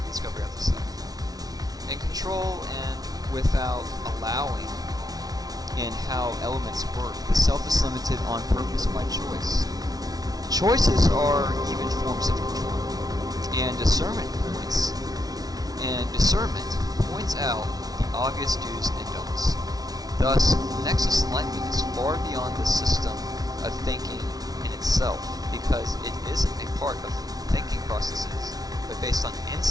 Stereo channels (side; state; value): left; late; 0.18 ms